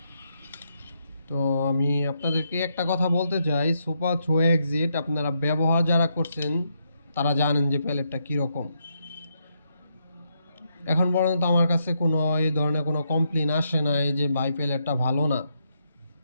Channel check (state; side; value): inverted; both; correlation -0.78